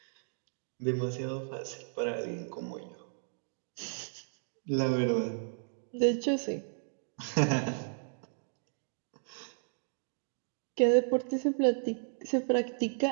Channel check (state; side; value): silent; left; digital silence